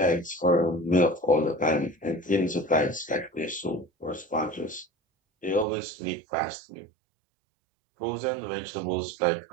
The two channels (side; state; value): left; drops out; at 5.7 s